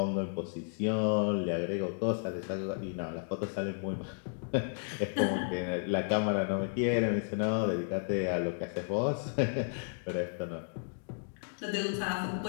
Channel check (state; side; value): silent; right; digital silence